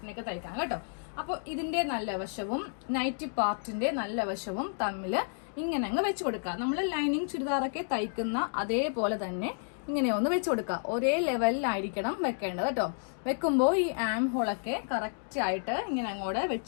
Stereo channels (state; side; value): silent; right; digital silence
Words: നെക്ക് തയ്ക്കാം കേട്ടോ. അപ്പോൾ ഇതിന്റെ നല്ല വശവും നൈറ്റി പാർട്ടിന്റെ നല്ല വശവും തമ്മിൽ ഇങ്ങനെ അങ്ങ് വെച്ച് കൊടുക്കുക. നമ്മൾ ലൈനിങ് ചുരിദാറൊക്കെ തയ്ക്കുന്ന അതേപോലെ തന്നെ ഇങ്ങനെ ഒന്ന് വെച്ച് കൊടുക്കുക. ഒരേ ലെവലിലായിരിക്കണം വെക്കേണ്ടത് കേട്ടോ. വെക്കുമ്പോൾ ഈ ആം ഹോളൊക്കെ കറക്റ്റ് ആയിട്ട് ഇങ്ങനെ അങ്ങോട്ട്